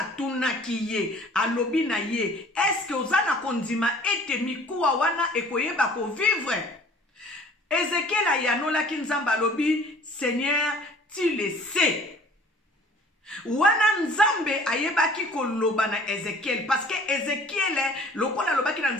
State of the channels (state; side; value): normal; both; correlation 0.50